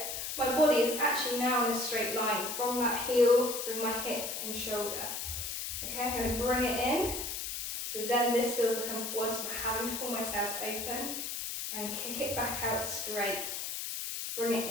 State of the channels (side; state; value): left; noise; hiss, 4 dB below the sound